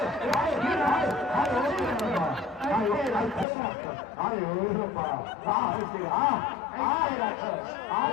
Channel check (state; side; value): drops out; right; at 3.5 s